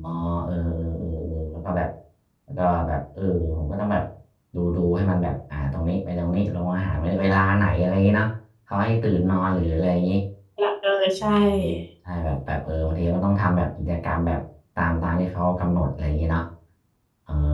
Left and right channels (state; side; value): identical; both; correlation 1.00